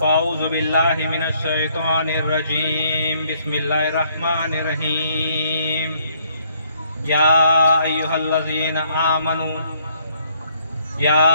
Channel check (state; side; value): inverted; both; correlation -0.68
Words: बिल्लाहि मिनश शैतानिर रजीम बिस्मिल्लाहिर रहमानिर रहीम या अय्युहल्लज़ीना